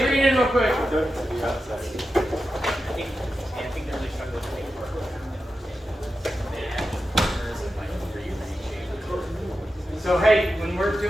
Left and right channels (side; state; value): both; normal; correlation 0.91